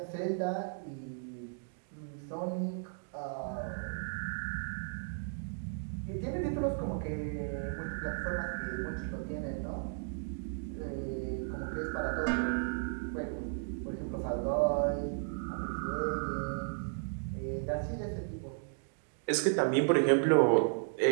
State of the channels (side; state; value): left; silent; digital silence